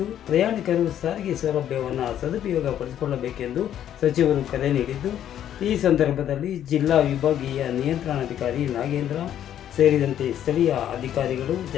ಪ್ರಯಾಣಿಕರು ಸಾರಿಗೆ ಸೌಲಭ್ಯವನ್ನು ಸದುಪಯೋಗ ಪಡಿಸಿಕೊಳ್ಳಬೇಕೆಂದು ಸಚಿವರು ಕರೆ ನೀಡಿದ್ದು, ಈ ಸಂದರ್ಭದಲ್ಲಿ ಜಿಲ್ಲಾ ವಿಭಾಗೀಯ ನಿಯಂತ್ರಣಾಧಿಕಾರಿ ನಾಗೇಂದ್ರ ಸೇರಿದಂತೆ ಸ್ಥಳೀಯ ಅಧಿಕಾರಿಗಳು,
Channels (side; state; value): right; quieter; 10.6 dB